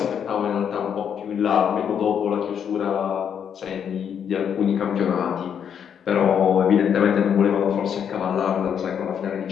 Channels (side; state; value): right; quieter; 8.1 dB